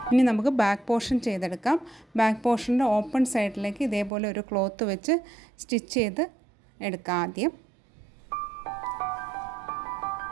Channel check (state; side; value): drops out; left; at 4.1 s